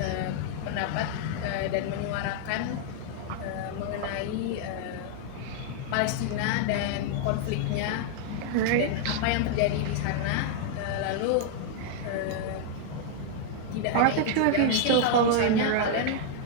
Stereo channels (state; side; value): different; both; correlation 0.00